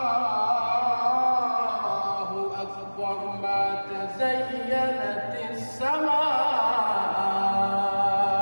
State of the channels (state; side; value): inverted; both; correlation -1.00